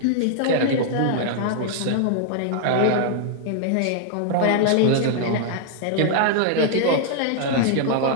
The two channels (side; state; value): both; different; correlation -0.01